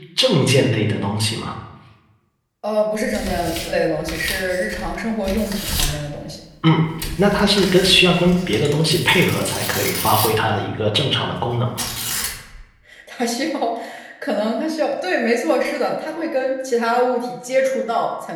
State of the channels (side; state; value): both; identical; correlation 1.00